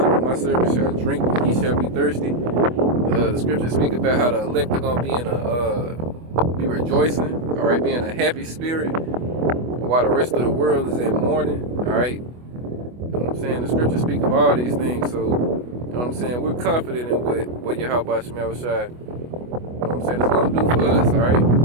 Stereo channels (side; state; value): left; late; 24 ms